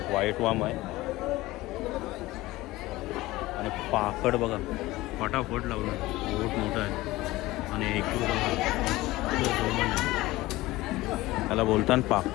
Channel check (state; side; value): quieter; right; 18.6 dB